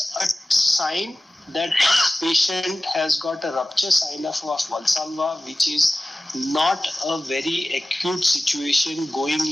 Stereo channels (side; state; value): both; normal; correlation 0.96